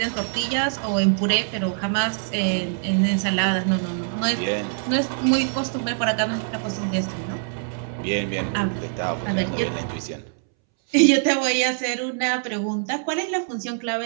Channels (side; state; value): left; silent; 63 dB below the other